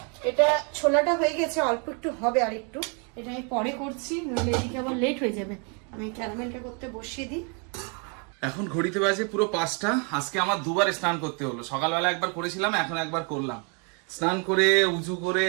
এটা ছোলাটা হয়ে গেছে, অল্প একটু হবে আর একটু, এটা আমি পরে করছি, নইলে এদিকে আবার লেট হয়ে যাবে। আমি ক্যারামেলটা করতে বসিয়ে দিই। এখন ঘড়িতে বাজে পুরো 5টা। আজকে আমার দুবার স্নান করতে হলো, সকালবেলা একবার করেছিলাম, এখন একবার করলাম। স্নান করে উজু করে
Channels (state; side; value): quieter; left; 36.5 dB